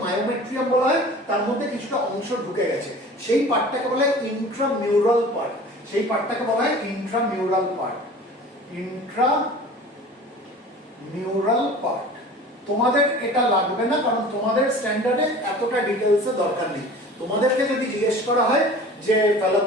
মায়োমেট্রিয়াম বলা হয়, তার মধ্যে কিছুটা অংশ ঢুকে গেছে। সেই পার্টটাকে বলা হয় ইন্ট্রামিউরাল পার্ট। সেই পার্টটাকে বলা হয় ইন্ট্রামিউরাল পার্ট। ইন্ট্রামিউরাল পার্ট। তোমাদের এটা লাগবে না, কারণ তোমাদের স্ট্যান্ডার্ডে এতটা ডিটেইলসে দরকার নেই। তোমাদেরকে যদি জিজ্ঞেস করা হয় যে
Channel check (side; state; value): both; normal; correlation 0.42